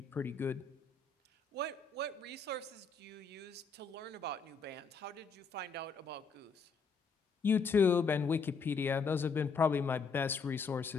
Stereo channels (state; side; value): quieter; right; 4.8 dB